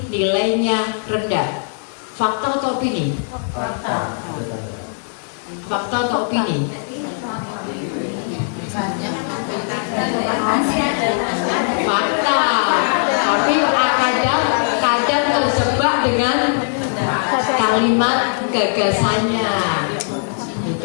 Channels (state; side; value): silent; right; digital silence